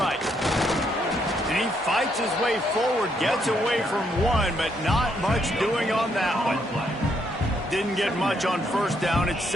And he fights his way forward, gets away from one, but not much doing on that one. Didn't get much on first down. It's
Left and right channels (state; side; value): normal; both; correlation 0.74